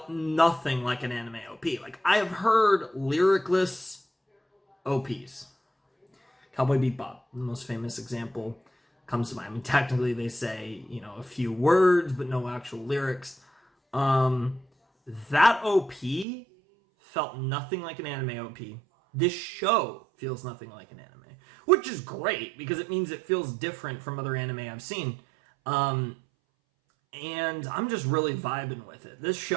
nothing like an anime OP. Like, I have heard lyricless OPs. Cowboy Bebop, the most famous example, comes to mind. I mean, technically they say, a few words, but no actual lyrics. That OP felt nothing like an anime OP. This show feels nothing like an anime, which is great because it means it feels different from other anime I've seen. And I'm just really vibing with it. This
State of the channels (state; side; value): drops out; left; at 16.2 s